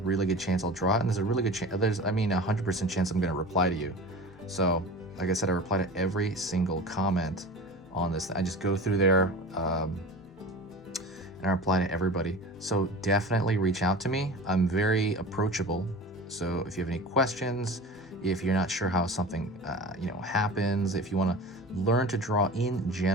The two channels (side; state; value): both; normal; correlation 0.35